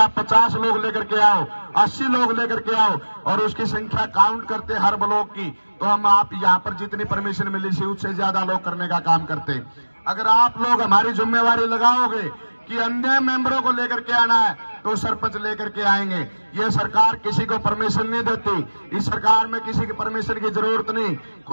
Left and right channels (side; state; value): both; inverted; correlation -1.00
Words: 50 लोग लेकर के आओ, 80 लोग लेकर के आओ, और उसकी संख्या काउंट करते हर ब्लॉक की, तो हम आप यहाँ पर जितनी परमिशन मिली थी उससे ज्यादा लोग करने का काम करते। अगर आप लोग हमारी जिम्मेवारी लगाओगे कि अन्य मेंबरों को लेकर के आना है, तो सरपंच लेकर के आएंगे। ये सरकार किसी को परमिशन नहीं देती, इस सरकार में किसी की परमिशन की जरूरत